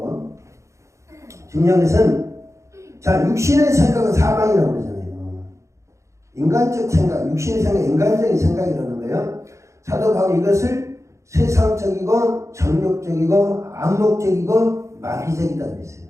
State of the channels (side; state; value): left; late; 0.14 ms